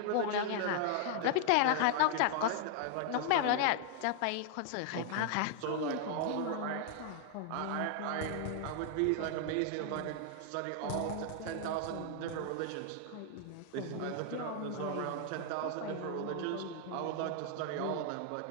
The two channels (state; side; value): different; both; correlation 0.00